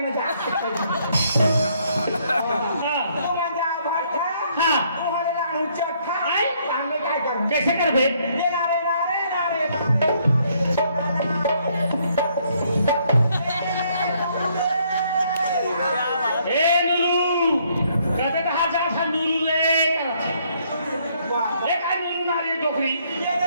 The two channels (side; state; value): both; inverted; correlation -0.68